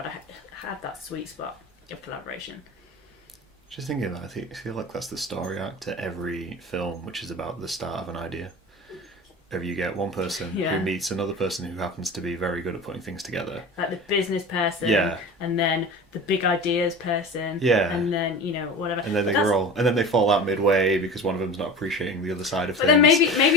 have that sweet spot of collaboration. Just thinking about it, I feel like that's the story arc to every film, which is about the start of an idea. If you get one person who meets another person who happens to be very good at putting things together. Like the business person, and then the big ideas person, and then, whatever. And then they fall out midway because one of them's not appreciating the other side of things. But then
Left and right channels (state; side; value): normal; both; correlation 0.34